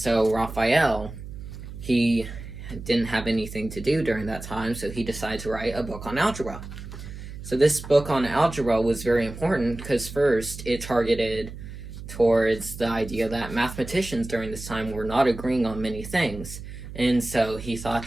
Raphael, he didn't have anything to do during that time, so he decided to write a book on algebra. So this book on algebra was very important because first, it targeted towards the idea that mathematicians during this time were not agreeing on many things. And so he thought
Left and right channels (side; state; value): right; noise; hum, 12 dB below the sound